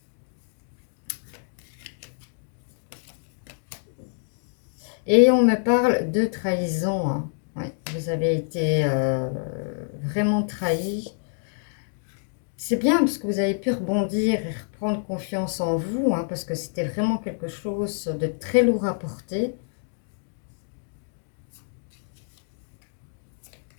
Et on me parle de trahison. Hein. Ouais, vous avez été vraiment trahi. C'est bien parce que vous avez pu rebondir et reprendre confiance en vous, hein, parce que c'était vraiment quelque chose de très lourd à porter.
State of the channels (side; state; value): right; silent; digital silence